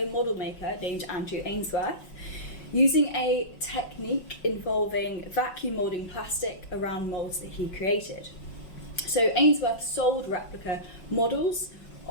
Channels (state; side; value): late; right; 5.5 ms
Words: model maker named Andrew Ainsworth, using a technique involving vacuum moulding plastic around moulds that he created. So Ainsworth sold replica models